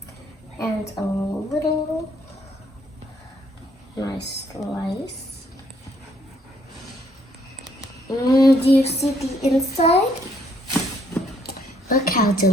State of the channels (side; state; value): both; normal; correlation 0.68